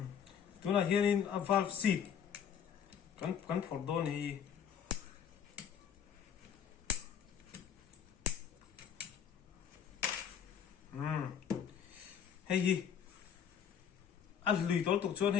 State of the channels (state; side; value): quieter; right; 8.2 dB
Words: tuna hianin a valve seat kan phor dawn hi hei hi a lui tol tuk chuan